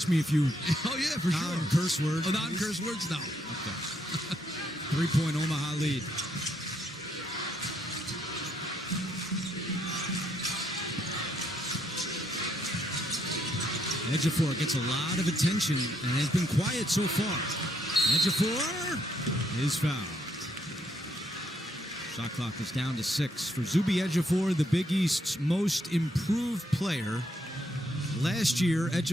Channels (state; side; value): normal; both; correlation 0.73